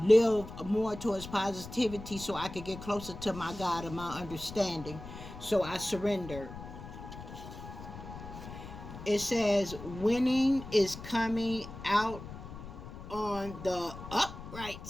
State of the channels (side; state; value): left; noise; rumble, 12 dB below the sound